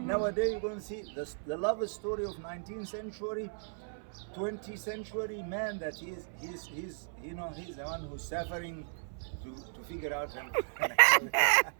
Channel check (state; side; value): silent; left; 55 dB below the other